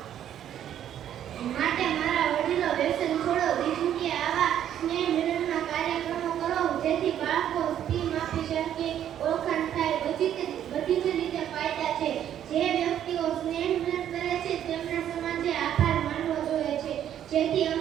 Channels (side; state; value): left; quieter; 10.5 dB